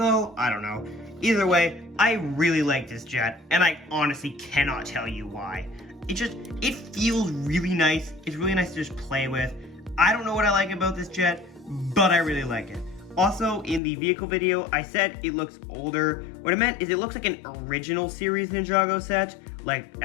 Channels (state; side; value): drops out; right; at 13.8 s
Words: I don't know. Either way, I really like this jet, and I honestly cannot tell you why. It feels really nice. It's really nice to just play with. I don't know what I like about this jet, but I really like it. Also, in the vehicle video, I said it looks older. What I meant is it looks like an original series Ninjago set, like